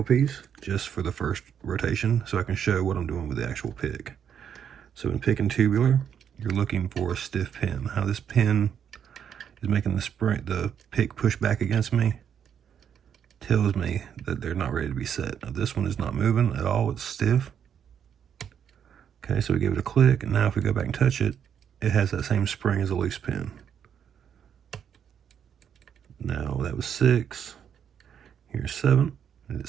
just for the first rotation so I can show what I'm doing with the actual pick. So in picking tubular, you're looking for a stiff pin. How this pin is making the pick push back against me tells me that they're not ready to be set. Now this one is not moving at all, it's stiff. Okay, so we give it a click, and now if we go back and touch it, it has that same spring as a loose pin. Now that was 6, here's 7, and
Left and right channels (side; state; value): left; quieter; 8.4 dB